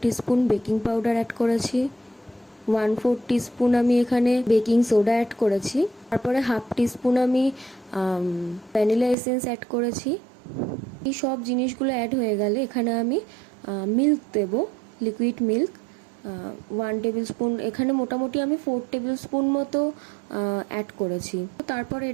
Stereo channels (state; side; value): drops out; left; at 9.2 s